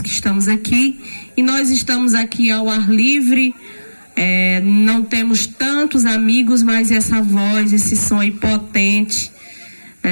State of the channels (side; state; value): both; inverted; correlation -1.00